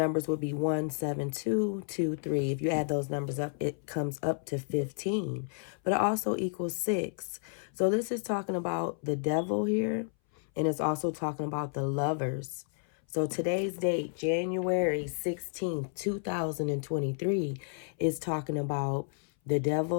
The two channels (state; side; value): silent; right; 57 dB below the other